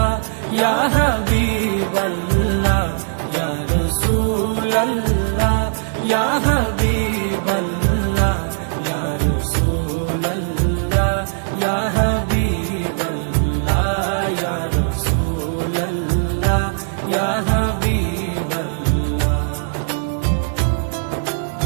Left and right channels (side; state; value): left; silent; digital silence